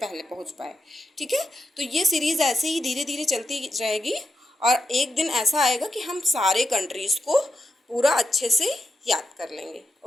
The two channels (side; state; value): both; normal; correlation 0.86